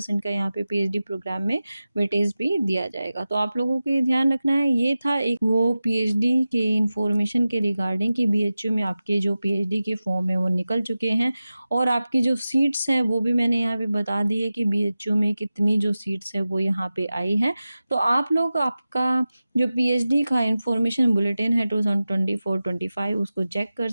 का यहाँ पे पीएचडी प्रोग्राम में वेटेज भी दिया जाएगा। तो आप लोगों को ये ध्यान रखना है, ये था एक वो पीएचडी के इन्फॉर्मेशन के रिगार्डिंग कि बीएचयू में आपके जो पीएचडी के फॉर्म है वो निकल चुके हैं और आपकी जो सीट्स हैं वो भी मैंने यहाँ पे बता दी है कि बीएचयू में कितनी जो सीट्स है वो यहाँ पे आई हैं। तो आप लोग आपका जो पीएचडी का इन्फॉर्मेशन बुलेटिन है 2024-25 उसको चेक कर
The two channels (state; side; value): inverted; both; correlation -0.95